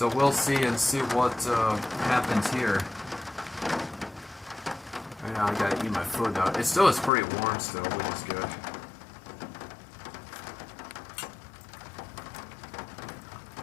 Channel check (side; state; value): right; drops out; at 7.1 s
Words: we'll see what happens here. Right now I gotta eat my food now. It still is pretty warm still, which is good.